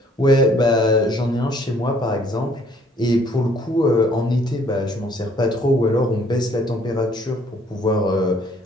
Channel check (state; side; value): normal; both; correlation 0.61